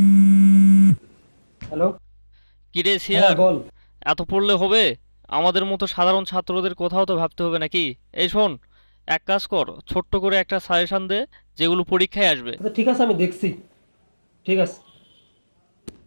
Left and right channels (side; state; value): both; inverted; correlation -1.00